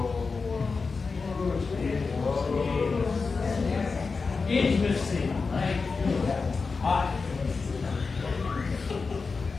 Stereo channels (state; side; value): quieter; right; 4.5 dB